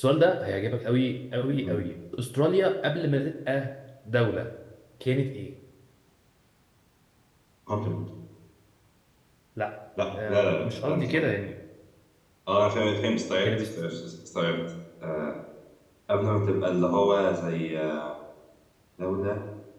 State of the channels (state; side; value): identical; both; correlation 1.00